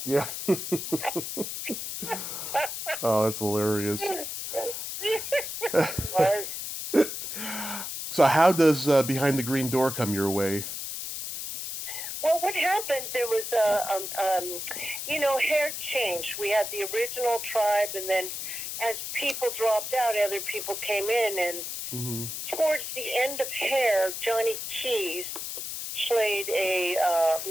Yeah. Oh, that's hilarious. So how does Behind the Green Door come your way? Well, what happened, there was hair change. We had the original tribe, and then as people dropped out, other people came in, and Mm-hmm. towards the end of Hair, Johnny Keys played a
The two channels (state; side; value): noise; left; hiss, 6 dB below the sound